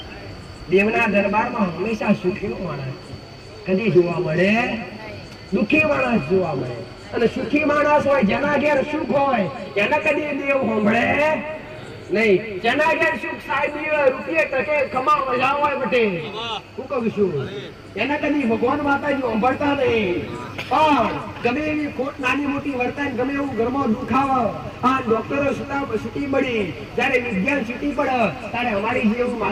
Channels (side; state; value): both; identical; correlation 1.00